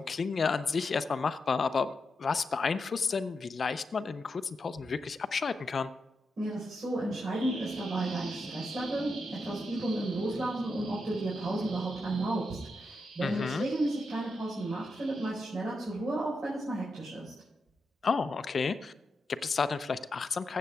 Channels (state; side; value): normal; both; correlation 0.86